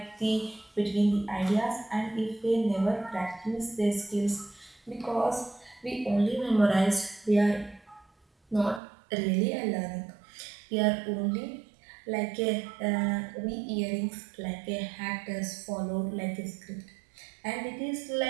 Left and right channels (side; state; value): left; drops out; at 8.8 s